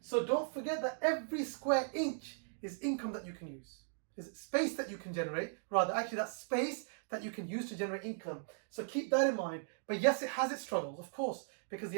don't forget that every square inch is income that you can use. Is space that you can generate, rather actually that's space that you can use to generate income. So keep that in mind. But yes, it has its struggles, of course, because the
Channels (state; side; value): silent; left; digital silence